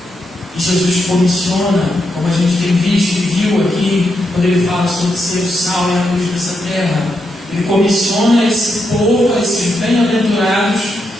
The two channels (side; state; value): both; normal; correlation 0.83